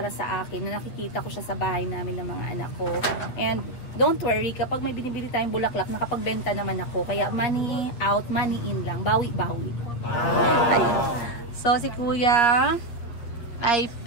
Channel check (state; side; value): late; right; 8.8 ms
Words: sa akin na nakikita ko siya sa bahay namin ng mga anak ko. And don't worry, kapag may binibili tayong bulaklak, nakapagbenta naman ako. Kaya money out, money in lang. Bawi-bawi. So, si Kuya ay